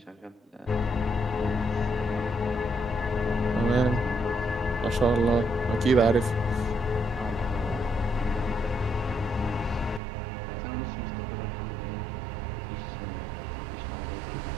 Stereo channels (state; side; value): drops out; left; at 10.0 s